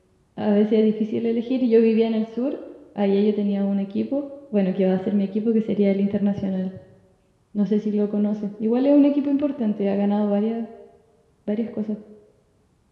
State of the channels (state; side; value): identical; both; correlation 1.00